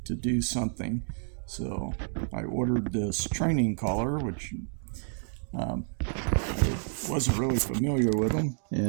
do something. So I ordered this training collar, which I wasn't really familiar with them.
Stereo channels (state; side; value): silent; left; 58 dB below the other